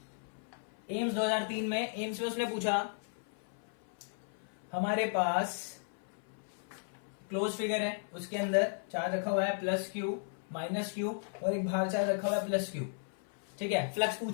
एम्स 2003 में उसने पूछा हमारे पास क्लोज फिगर है, उसके अंदर चार्ज रखा हुआ है प्लस क्यू माइनस क्यू, और एक बाहर चार्ज रखा हुआ है प्लस क्यू। ठीक है, फ्लक्स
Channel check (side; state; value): right; silent; 54 dB below the other